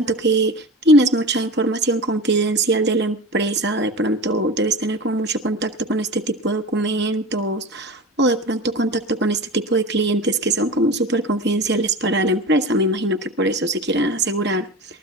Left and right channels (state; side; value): normal; both; correlation 0.31